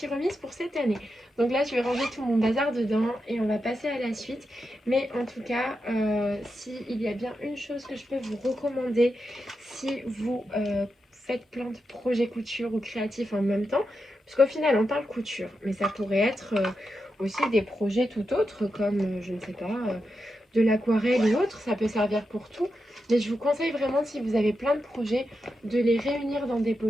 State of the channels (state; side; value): normal; both; correlation 0.87